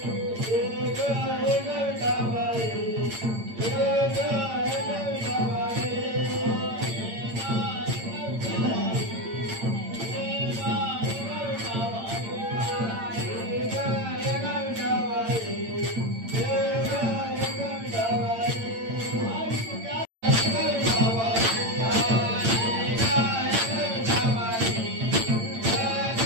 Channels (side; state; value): left; late; 8.8 ms